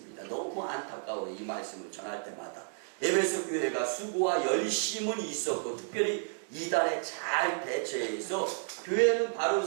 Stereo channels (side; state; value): left; silent; digital silence